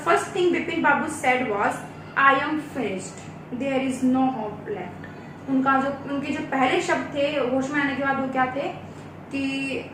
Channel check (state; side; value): identical; both; correlation 1.00